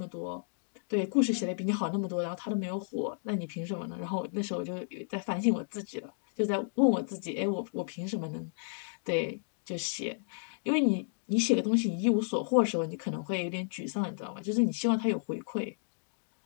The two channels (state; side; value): silent; right; digital silence